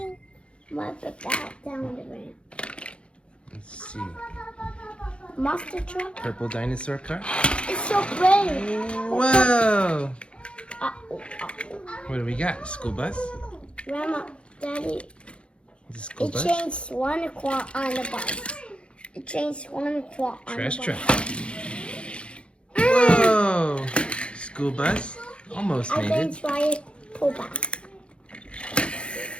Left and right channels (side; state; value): right; late; 0.058 ms